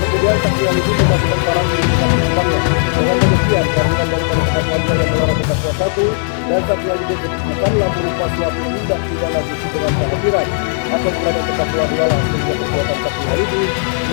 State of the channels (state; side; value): silent; right; digital silence